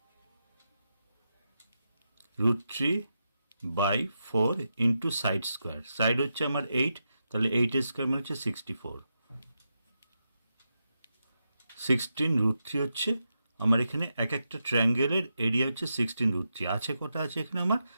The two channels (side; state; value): both; inverted; correlation -0.87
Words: √3/4 into side square. Side হচ্ছে আমার 8, তাহলে 8 স্কোয়ার মানে হচ্ছে 64। 16 √3 হচ্ছে আমার এখানে এক একটা ট্রায়াঙ্গেলের এরিয়া হচ্ছে 16 √3। আছে কটা আছে এখানে আমার